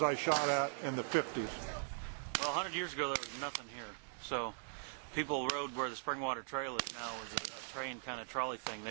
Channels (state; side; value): silent; left; digital silence